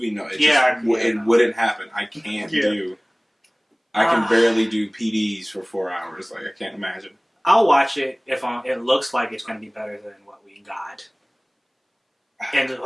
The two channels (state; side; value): identical; both; correlation 1.00